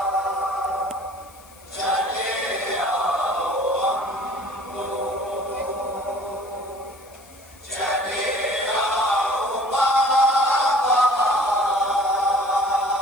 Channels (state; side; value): noise; left; hiss, 26 dB below the sound